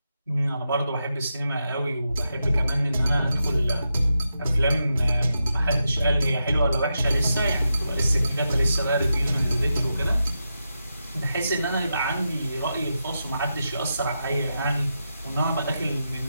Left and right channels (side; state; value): both; inverted; correlation -0.87